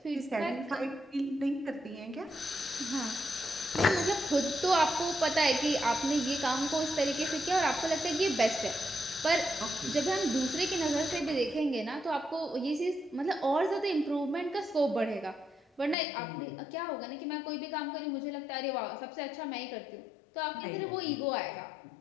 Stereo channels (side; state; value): right; drops out; at 16.0 s